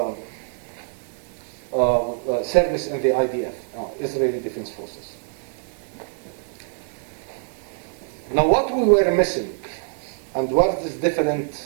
service in the IDF, Israeli Defense Forces. Now, what we were missing, and what is different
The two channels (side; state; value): left; silent; digital silence